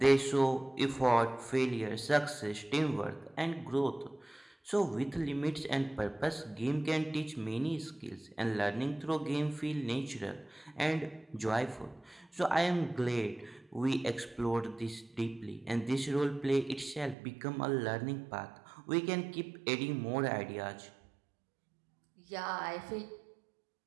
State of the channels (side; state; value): left; drops out; at 17.2 s